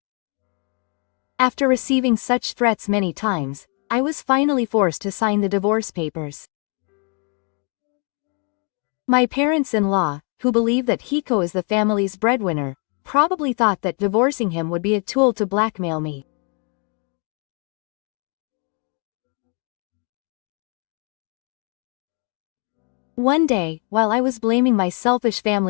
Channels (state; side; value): quieter; right; 38.2 dB